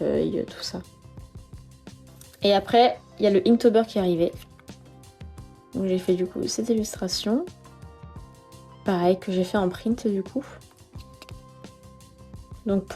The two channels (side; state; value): both; identical; correlation 1.00